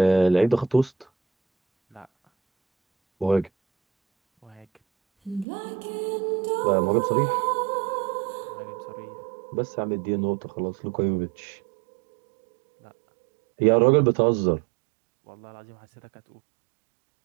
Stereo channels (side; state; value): left; drops out; at 5.5 s